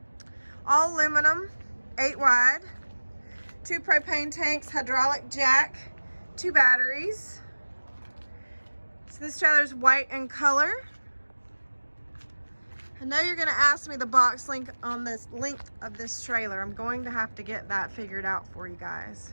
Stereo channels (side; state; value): both; inverted; correlation -1.00